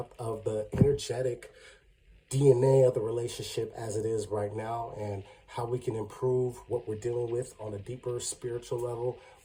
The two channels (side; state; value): both; identical; correlation 1.00